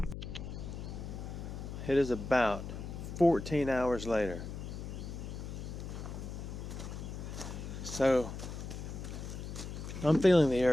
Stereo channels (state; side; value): noise; left; hum, 7 dB below the sound